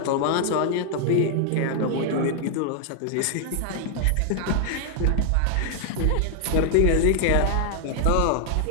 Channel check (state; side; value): different; both; correlation 0.00